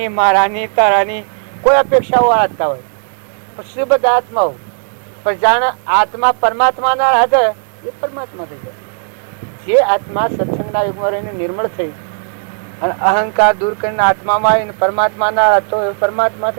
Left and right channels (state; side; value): silent; left; digital silence